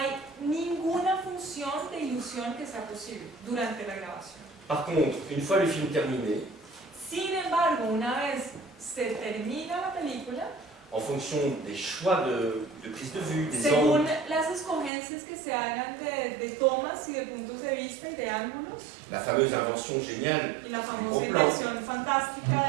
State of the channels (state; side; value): drops out; left; at 14.9 s